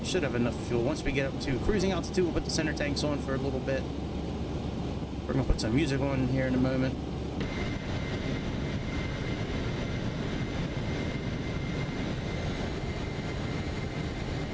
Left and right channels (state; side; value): identical; both; correlation 1.00